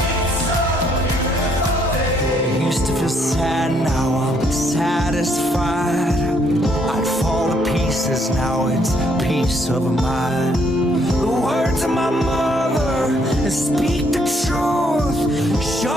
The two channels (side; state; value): both; normal; correlation 0.69